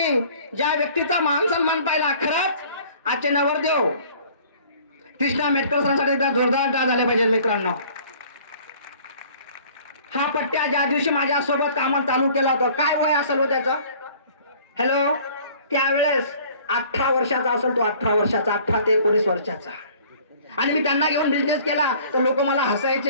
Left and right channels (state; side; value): inverted; both; correlation -0.52